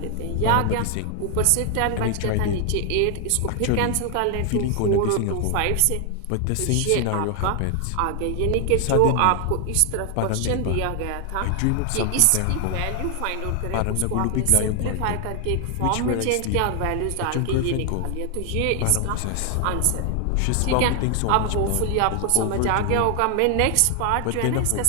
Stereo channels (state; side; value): different; both; correlation 0.00